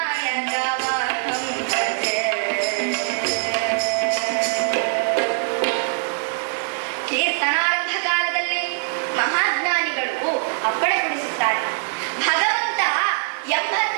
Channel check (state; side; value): silent; left; digital silence